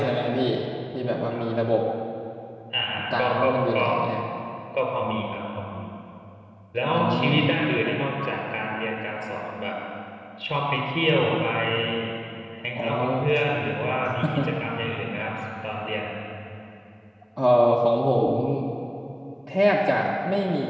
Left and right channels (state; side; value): identical; both; correlation 1.00